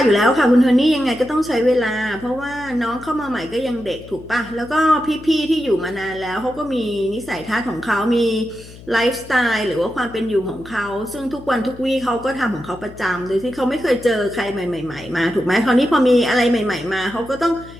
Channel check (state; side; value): noise; left; hum, 18 dB below the sound